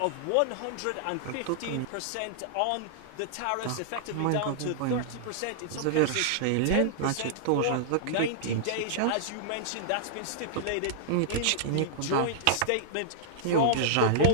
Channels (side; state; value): both; different; correlation -0.02